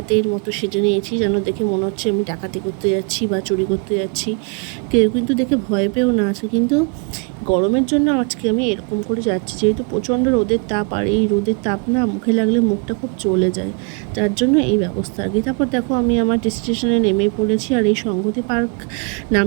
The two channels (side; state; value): left; quieter; 36.0 dB